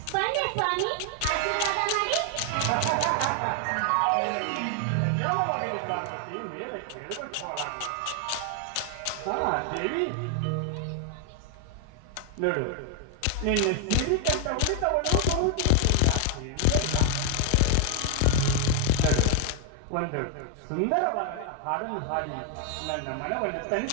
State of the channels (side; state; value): both; different; correlation 0.00